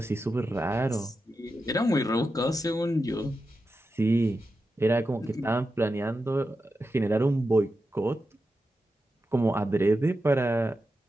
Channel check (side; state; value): both; normal; correlation 0.90